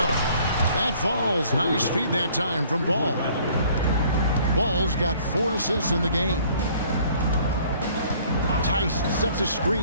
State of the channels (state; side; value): inverted; both; correlation -0.57